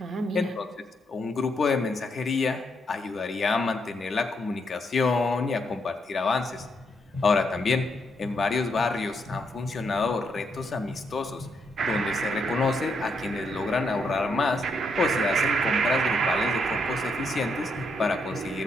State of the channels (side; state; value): both; normal; correlation 0.77